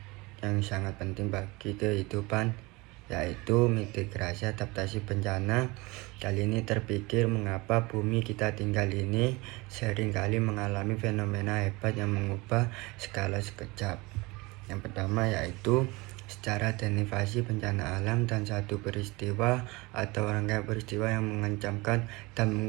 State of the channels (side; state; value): left; quieter; 23.9 dB